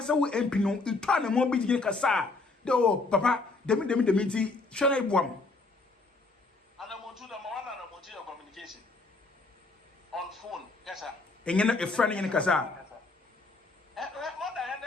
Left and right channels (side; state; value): right; quieter; 3.5 dB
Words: will MP no, you turn a more big Kasa. Oh, Papa, the meeting, shall I bomb? And I'm on to the one and I'm on communication on phone, yes, sir. Engine a friend in Kasa. More than